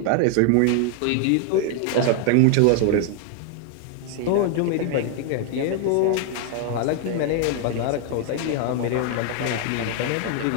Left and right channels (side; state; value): both; different; correlation 0.00